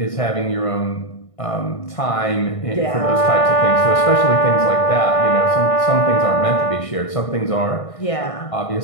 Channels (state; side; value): late; right; 1.6 ms